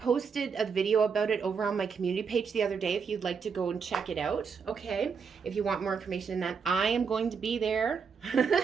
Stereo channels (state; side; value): quieter; left; 5.9 dB